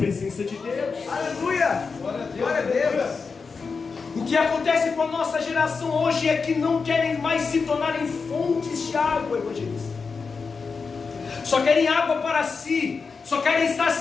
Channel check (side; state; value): right; quieter; 5.0 dB